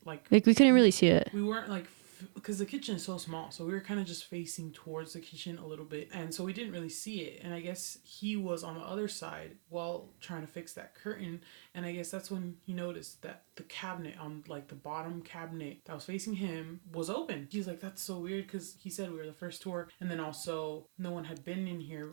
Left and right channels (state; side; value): silent; left; digital silence